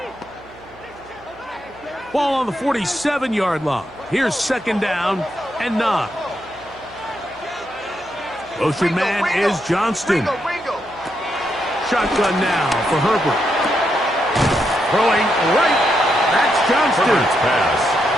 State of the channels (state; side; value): noise; right; hum, 26 dB below the sound